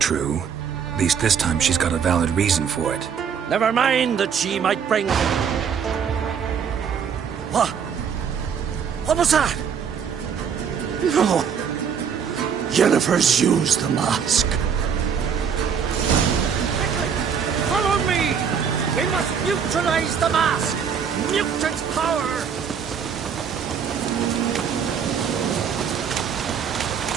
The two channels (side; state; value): left; quieter; 7.2 dB